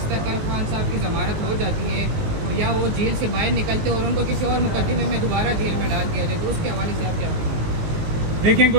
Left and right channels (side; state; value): left; late; 19 ms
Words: कल खान साहब की ज़मानत हो जाती है या वो जेल से बाहर निकलते और उनको किसी और मुकदमे में दोबारा जेल में डाल दिया जाए, तो उसके हवाले से आप क्या देखें?